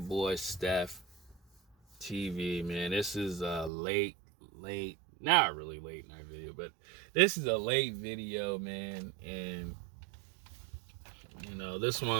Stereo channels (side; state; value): left; drops out; at 3.7 s